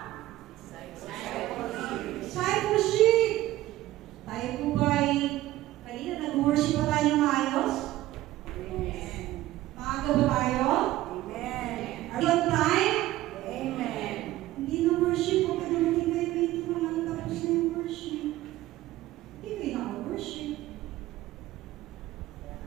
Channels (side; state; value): left; quieter; 15.8 dB